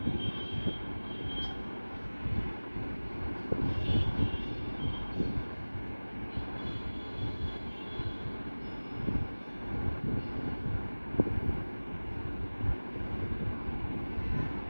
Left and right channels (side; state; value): both; inverted; correlation -1.00